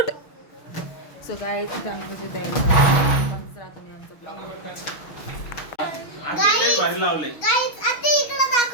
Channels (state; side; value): late; right; 6.2 ms